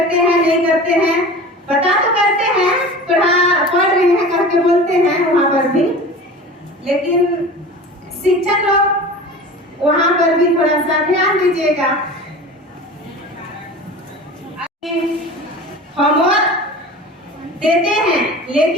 हैं नहीं करते हैं, पता तो करते हैं, पढ़ रहे हैं करके बोलते हैं वहाँ पर भी, लेकिन शिक्षक लोग वहाँ पर भी थोड़ा सा ध्यान दीजिएगा। होमवर्क देते हैं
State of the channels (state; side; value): normal; both; correlation 0.36